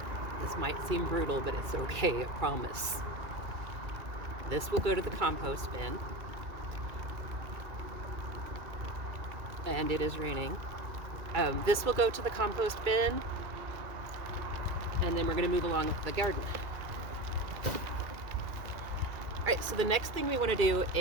This might seem brutal, but it's okay, I promise. This will go to the compost bin. And it is raining. This will go to the compost bin. And then we're gonna move along with the garden. All right, so the next thing we wanna do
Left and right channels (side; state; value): left; late; 2.4 ms